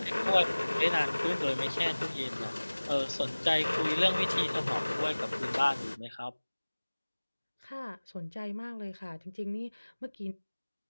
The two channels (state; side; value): inverted; both; correlation -1.00